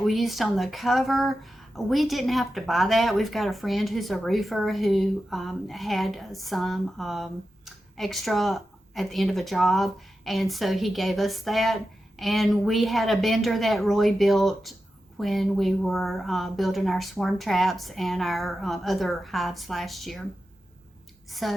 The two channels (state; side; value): normal; both; correlation 0.91